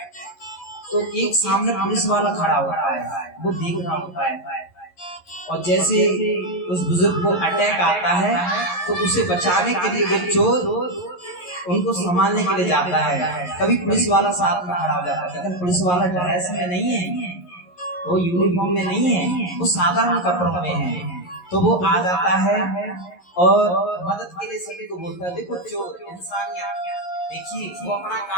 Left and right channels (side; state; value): right; late; 11 ms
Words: तो एक सामने पुलिस वाला खड़ा होता है, वो देख रहा होता है, और जैसे उस बुजुर्ग को अटैक आता है तो उसे बचाने के लिए वो चोर उनको संभालने के लिए जाता है। तभी पुलिस वाला साथ में खड़ा हो जाता है, लेकिन पुलिस वाला ड्रेस में नहीं है, वो यूनिफॉर्म में नहीं है, वो साधारण कपड़ों में है। तो वो आ जाता है और मदद के लिए सभी को बोलता है। देखो चोर इंसानियत, देखिए वो अपना